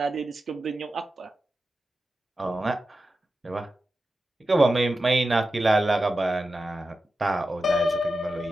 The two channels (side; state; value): both; normal; correlation 0.92